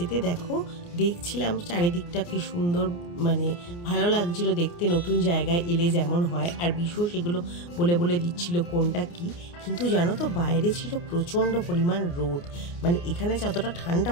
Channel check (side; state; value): right; late; 29 ms